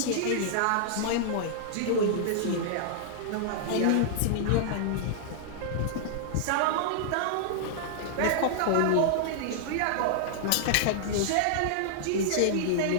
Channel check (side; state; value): both; different; correlation -0.01